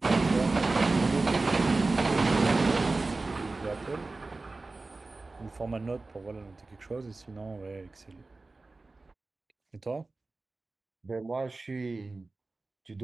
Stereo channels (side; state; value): left; quieter; 3.4 dB